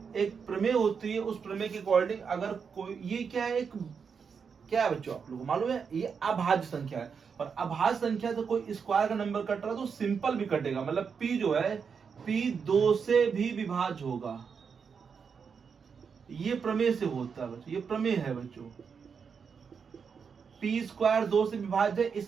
एक प्रमेय होती है, उस प्रमेय के अकॉर्डिंग अगर कोई, ये क्या है, एक क्या है बच्चों आप लोगों को मालूम है, ये अभाज्य संख्या है। और अभाज्य संख्या से कोई स्क्वायर का नंबर कट रहा है तो सिंपल भी कटेगा, मतलब p जो है p 2 से भी विभाज्य होगा। ये प्रमेय से होता है बच्चों, ये प्रमेय है बच्चों। p स्क्वायर 2 से विभाज्य है,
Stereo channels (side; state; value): left; quieter; 6.1 dB